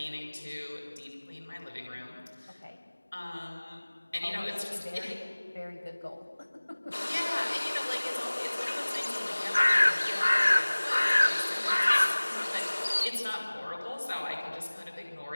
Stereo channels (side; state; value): both; inverted; correlation -1.00